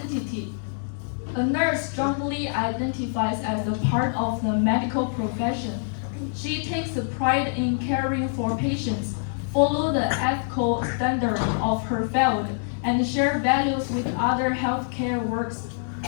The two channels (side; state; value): right; silent; digital silence